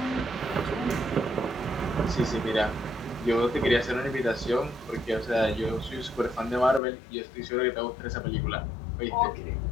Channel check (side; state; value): right; drops out; at 6.8 s